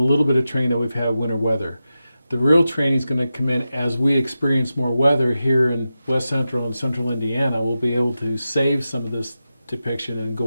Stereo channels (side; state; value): both; inverted; correlation -0.91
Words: little bit of training that we've had with winter weather. The real training is going to come in as we experience more weather here in West Central and Central Indiana. We'll be able to save some of this depiction and